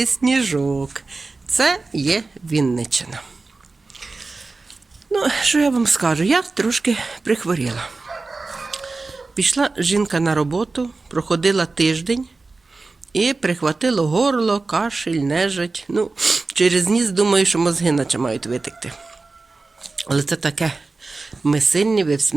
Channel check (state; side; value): quieter; left; 3.7 dB